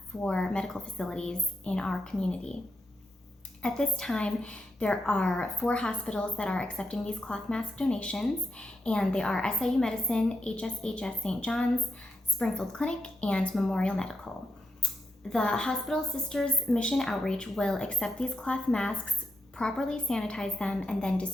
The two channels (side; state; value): both; normal; correlation 0.84